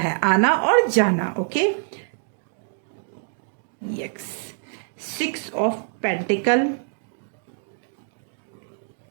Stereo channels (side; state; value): left; silent; digital silence